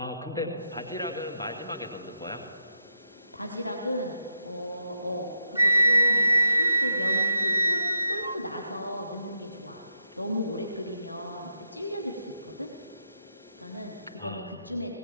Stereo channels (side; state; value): both; inverted; correlation -0.81